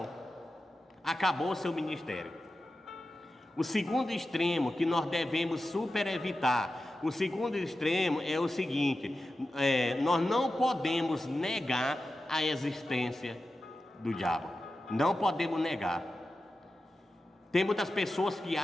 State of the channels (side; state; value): both; normal; correlation 0.93